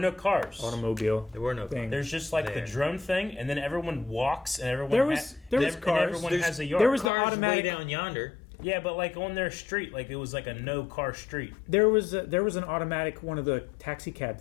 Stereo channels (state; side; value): drops out; right; at 7.1 s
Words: cars. Automobile. There were no thing. There's just the drone thing, and then everyone walks, and everyone there was cars. And everyone has a yard. There was the Cars automatic way down yonder. Yeah, but on their street, it was a no car street. There was an automatic one of the taxi cab